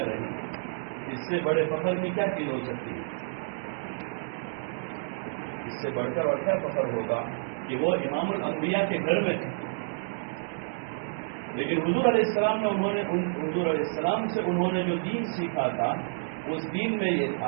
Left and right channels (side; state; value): left; silent; digital silence